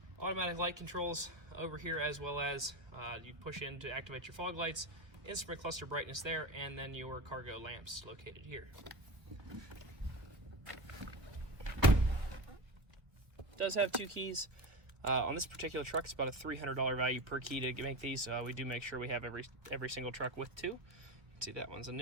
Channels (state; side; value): late; left; 1.5 ms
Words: Automatic light controls over here, as well as you push in to activate your fog lights, instrument cluster brightness there, and then your cargo lamps located here. It does have 2 keys. On this particular truck, it's about a $300 value per key to make these. We do make sure we have every single truck with 2. You can see that one's a